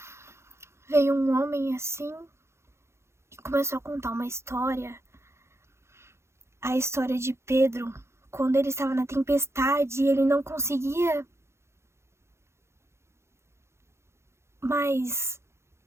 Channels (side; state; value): left; late; 0.13 ms